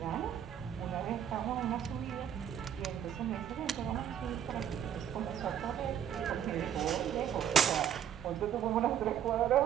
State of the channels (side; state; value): left; quieter; 9.6 dB